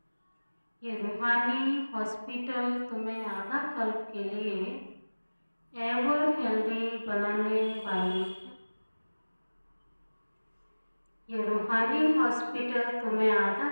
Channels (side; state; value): both; inverted; correlation -1.00